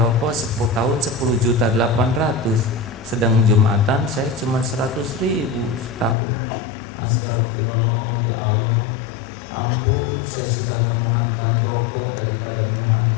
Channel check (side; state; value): right; drops out; at 6.2 s